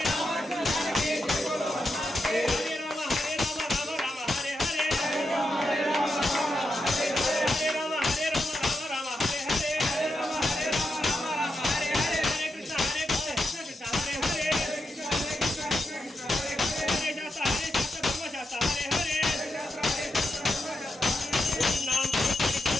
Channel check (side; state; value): both; normal; correlation 0.86